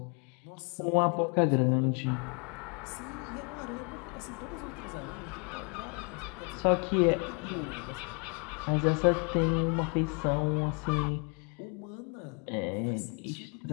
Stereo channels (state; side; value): quieter; right; 35.5 dB